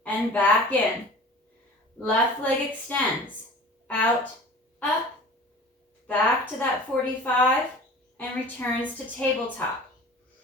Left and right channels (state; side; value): normal; both; correlation 0.41